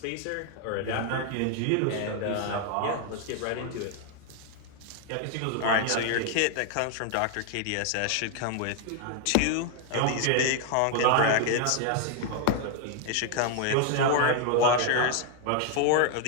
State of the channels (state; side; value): different; both; correlation 0.00